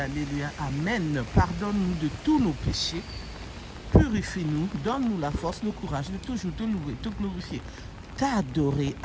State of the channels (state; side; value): identical; both; correlation 1.00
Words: alléluia, amen. Pardonne-nous de tous nos péchés, purifie-nous, donne-nous la force, le courage de toujours te louer, te glorifier, t'adorer,